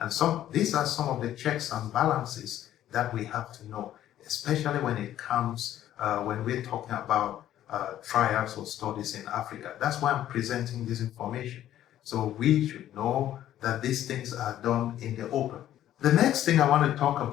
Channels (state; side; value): quieter; right; 12.2 dB